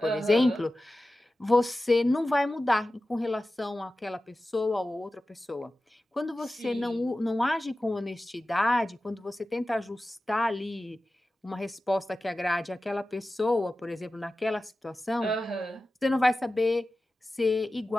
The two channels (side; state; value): both; normal; correlation 0.95